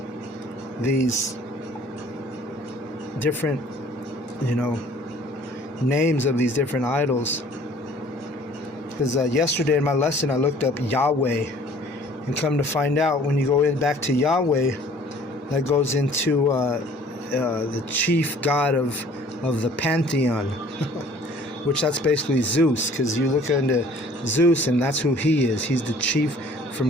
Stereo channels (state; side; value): normal; both; correlation 0.53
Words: different, names of these different idols. Because yesterday in my lesson I looked up Yahweh, and come to find out, when you go back to Yahweh, that goes into the chief god of the pantheon, which that's basically Zeus, because you look into Zeus and that's who he is. He's the chief